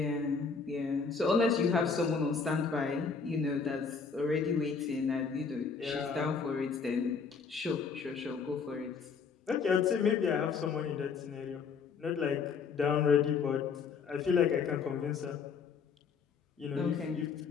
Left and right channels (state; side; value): quieter; right; 5.5 dB